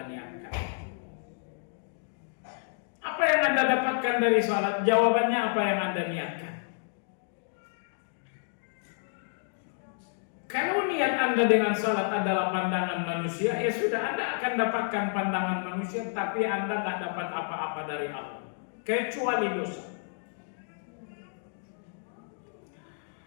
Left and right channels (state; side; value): silent; right; digital silence